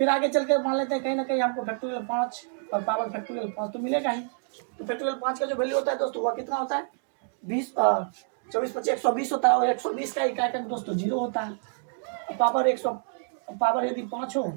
आगे चल के मान लेते हैं कहीं ना कहीं हमको फैक्टोरियल 5 और पावर फैक्टोरियल 5 तो मिलेगा ही। तो फैक्टोरियल 5 का जो वैल्यू होता है दोस्तों वह कितना होता है? 20 24 25 120 होता है और 120 का इकाई का दोस्तों 0 होता है। पावर यदि 5 हो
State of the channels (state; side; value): silent; left; 60 dB below the other